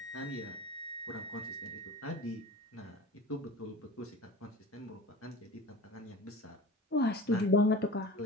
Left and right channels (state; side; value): normal; both; correlation 0.36